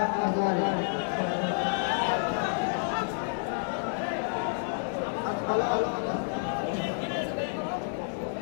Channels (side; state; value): right; silent; digital silence